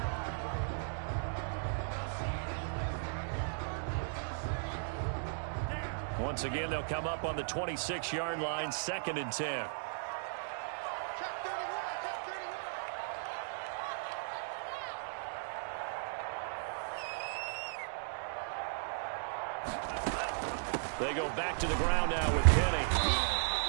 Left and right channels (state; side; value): silent; left; digital silence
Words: Once again, they'll come up on the 26-yard line, 2nd and 10. Check 31, check 31. They go back to the ground now with Penny.